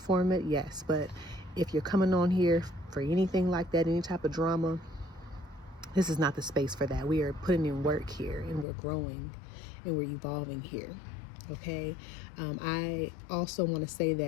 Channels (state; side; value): drops out; right; at 8.7 s